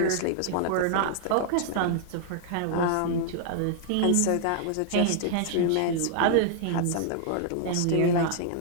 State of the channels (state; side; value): different; both; correlation -0.01